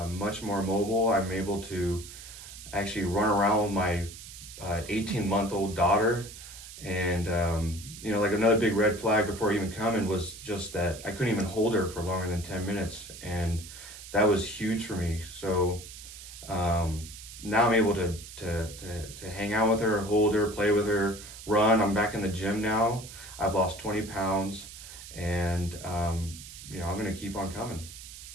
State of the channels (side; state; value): right; noise; hiss, 14 dB below the sound